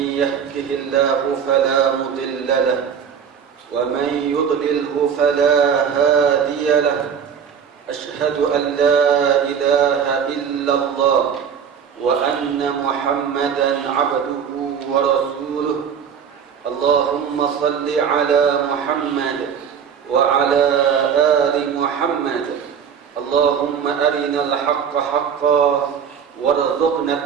يهده الله فلا مضل له ومن يضلله فلا هادي له. أشهد أن لا إله إلا الله وأن محمدا عبده ورسوله. اللهم صل على محمد وعلى آل محمد. اللهم أرنا الحق حقا وارزقنا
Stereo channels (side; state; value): left; quieter; 7.4 dB